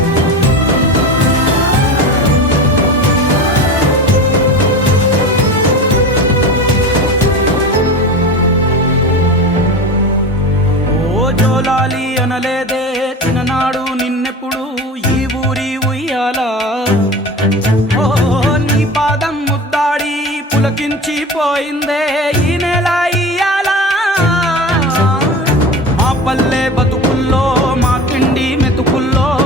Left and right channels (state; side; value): normal; both; correlation 0.30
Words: ఓ జోలాలి అనలేదే చిన్ననాడు నిన్నెప్పుడు ఈ ఊరి ఉయ్యాలా ఓ నీ పాదం ముద్దాడి పులకించి పోయిందే ఈ నెల ఇయ్యాలా మా పల్లె బతుకుల్లో మా తిండి మెతుకుల్లో